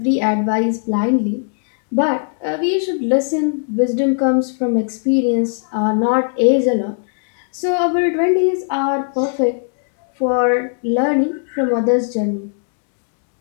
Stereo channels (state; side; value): silent; right; digital silence